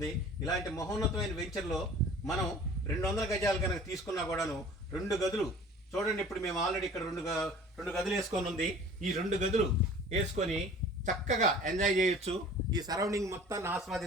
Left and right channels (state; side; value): normal; both; correlation 0.46